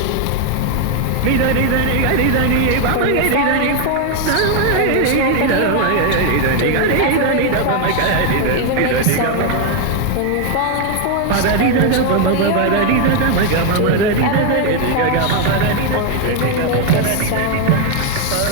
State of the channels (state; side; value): different; both; correlation 0.01